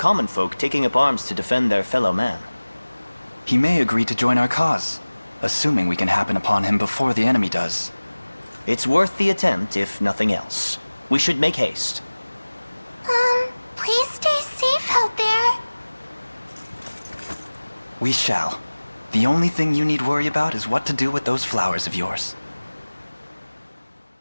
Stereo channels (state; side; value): inverted; both; correlation -1.00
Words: folk taking up arms to defend their fellow man. He may agree to join our cause, assuming we can happen upon him before the enemy does. It's worth the attempt, if nothing else. We should make haste. Please stay safe out there. We shall. The only thing you need worry about is what to do with those flowers of yours.